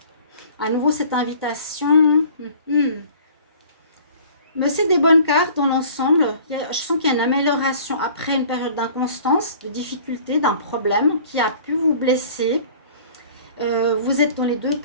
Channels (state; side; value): inverted; both; correlation -0.49